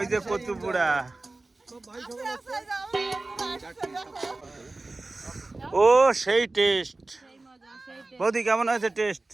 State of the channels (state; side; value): quieter; left; 3.1 dB